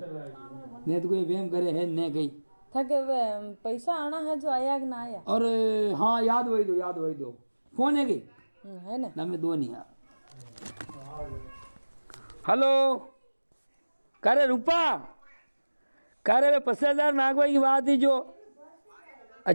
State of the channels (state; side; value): inverted; both; correlation -1.00